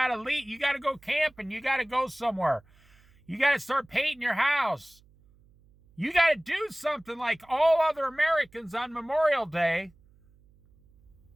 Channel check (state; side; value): noise; right; hum, 30 dB below the sound